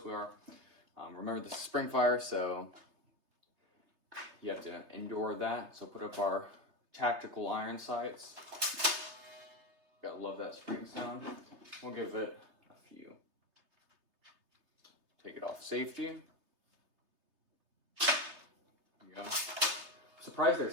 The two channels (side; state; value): left; late; 3.3 ms